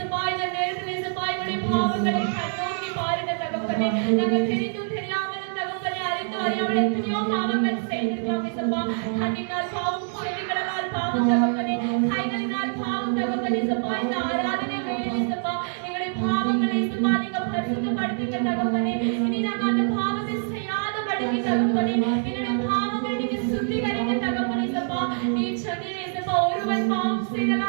இந்த நேரத்தில் இயேசுப்பா எங்களுடைய பாவங்களை கண்ணோக்கி பாருங்க தகப்பனே. நாங்கள் தெரிந்தும் தெரியாமலும் தகப்பனே, அறிந்து அறியாமல் எத்தனையோ பாவங்கள் செய்திருக்கலாம் இயேசுப்பா. கண்ணினால் பாவம், செவிகளால் பாவம் தகப்பனே, கைகளினால் பாவம் தகப்பனே. இயேசுப்பா, இந்த ஆராதனை வேளையில் இயேசுப்பா எங்களுடைய பாவங்களை இயேசுப்பா நீங்க பரிசுத்தப்படுத்துங்க தகப்பனே. இனி நாங்கள் அந்த பாவத்தை செய்யாதபடிக்கு தகப்பனே எங்களுடைய பாவங்களை நீங்க சுத்திகரிங்க தகப்பனே. இயேசுப்பா, நீ சொன்னீர் இயேசுப்பா, ஒருவன் பாவம் செய்தால்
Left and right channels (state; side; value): silent; left; digital silence